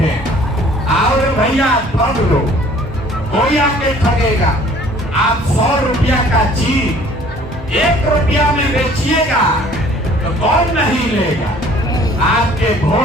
आओ भैया ठग लो, कोई आके ठगेगा। आप 100 रुपया का चीज 1 रुपया में बेचिएगा तो कौन नहीं लेगा? आपके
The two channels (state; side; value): normal; both; correlation 0.54